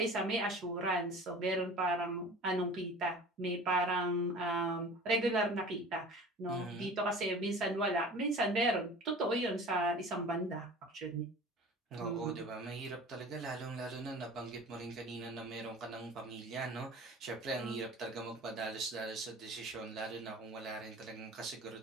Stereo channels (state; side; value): normal; both; correlation 0.41